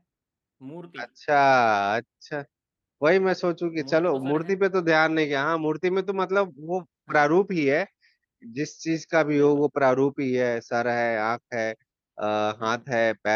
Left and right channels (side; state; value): both; identical; correlation 1.00